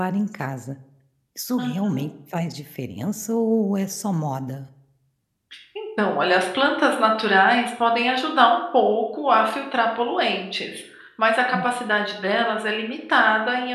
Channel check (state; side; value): identical; both; correlation 1.00